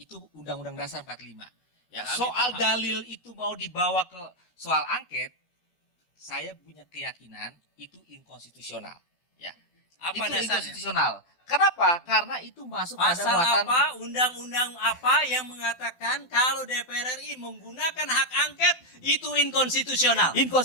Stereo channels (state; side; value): late; right; 12 ms